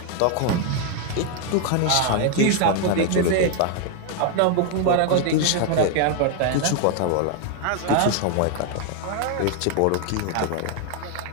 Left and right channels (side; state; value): both; different; correlation 0.00